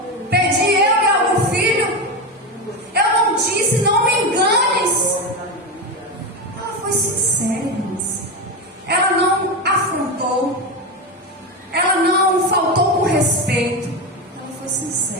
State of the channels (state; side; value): normal; both; correlation 0.16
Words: pedi eu e algum filho? Eu não disse, não me enganes. Ela foi sincera, irmãos. Ela não afrontou. Ela não faltou com respeito. Ela foi